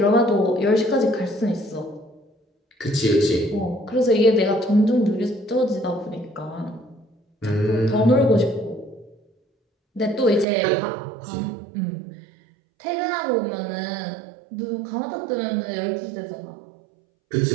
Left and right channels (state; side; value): drops out; left; at 10.5 s